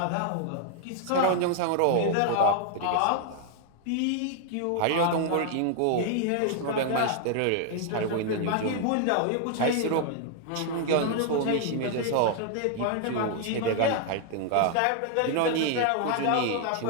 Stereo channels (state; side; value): different; both; correlation 0.00